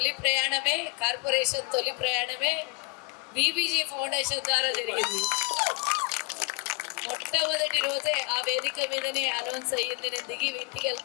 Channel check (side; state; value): right; quieter; 28.4 dB